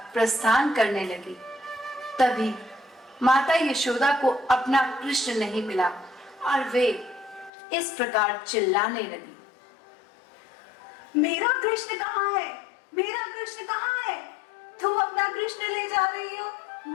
प्रस्थान करने लगी। तभी माता यशोदा को अपना कृष्ण नहीं मिला और वे इस प्रकार चिल्लाने लगी, मेरा कृष्ण कहाँ है? मेरा कृष्ण कहाँ है? तुम अपना कृष्ण ले जा रही हो,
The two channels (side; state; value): right; drops out; at 7.5 s